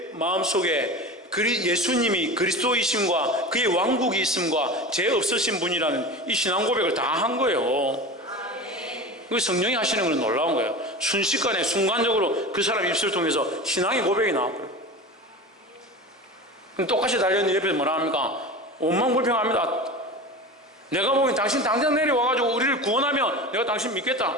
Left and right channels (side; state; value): both; normal; correlation 0.30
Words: 마음속에 예수님이 그리스도이심과 그의 왕국이 있음과 죄 없으신 분이라는 이 신앙 고백을 다 한 거예요. 그 성령이 하시는 건 놀라운 거예요. 순식간에 순간적으로 그 사람 입술을 통해서 신앙의 고백이 나왔고요. 똑같이 달려있는 옆에서 뭐라 합니까? 원망불평합니다. 내가 보기엔 당신 당장 내려와가지고 우리를 구원하면 내가 당신 믿겠다.